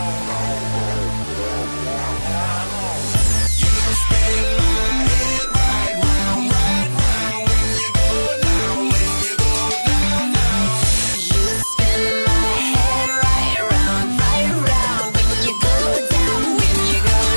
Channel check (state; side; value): inverted; both; correlation -1.00